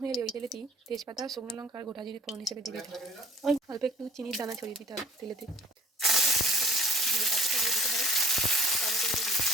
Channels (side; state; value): both; normal; correlation 0.53